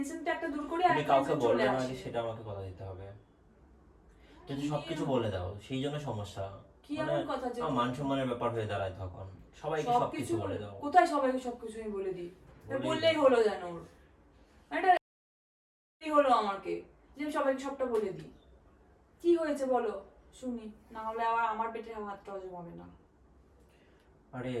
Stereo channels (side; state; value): both; identical; correlation 1.00